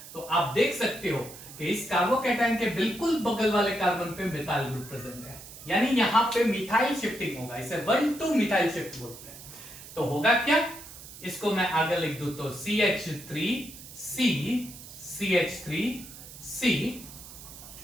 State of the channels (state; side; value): noise; right; hiss, 15 dB below the sound